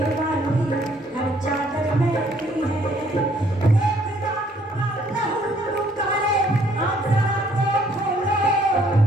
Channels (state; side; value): normal; both; correlation 0.64